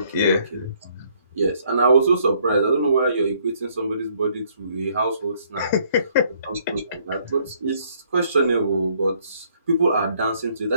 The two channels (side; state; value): both; inverted; correlation -0.66